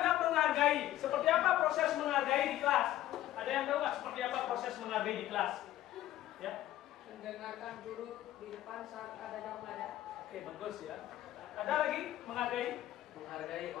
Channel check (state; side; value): quieter; right; 13.9 dB